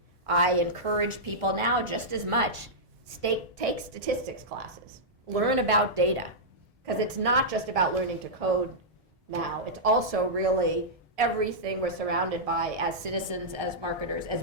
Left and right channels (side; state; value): both; normal; correlation -0.11